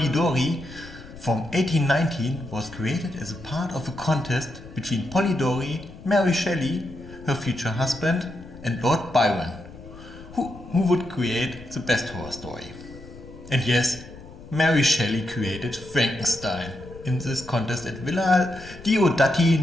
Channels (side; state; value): left; noise; rumble, 17 dB below the sound